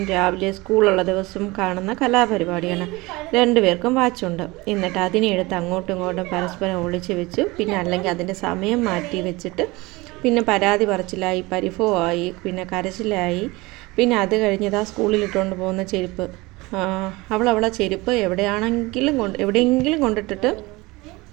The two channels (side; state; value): left; quieter; 22.5 dB